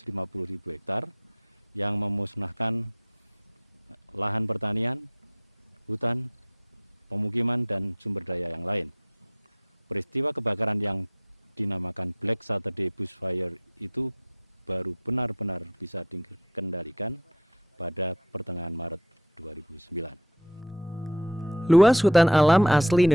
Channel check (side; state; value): both; normal; correlation 0.38